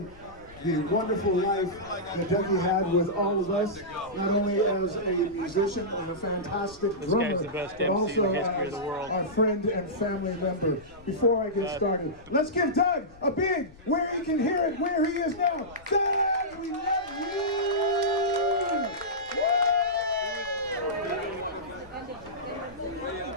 the wonderful life that Dougie had with all of us, not only as a musician and a fantastic drummer, the best but MC also in the history of the world. Our friend and family member. Before I get started, let's give Doug a big, where he can hear it, where he is now. Doug, we love you!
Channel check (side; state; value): left; noise; rumble, 23 dB below the sound